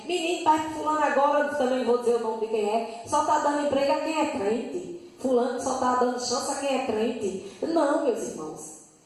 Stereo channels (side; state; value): both; identical; correlation 1.00